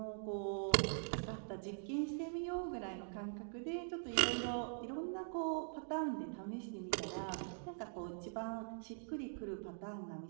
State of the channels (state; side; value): silent; left; digital silence